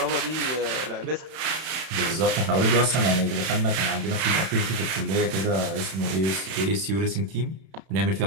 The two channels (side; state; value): left; late; 31 ms